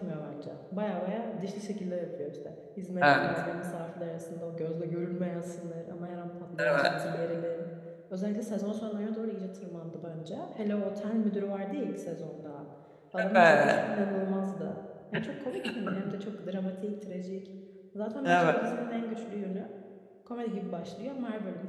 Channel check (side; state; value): both; identical; correlation 1.00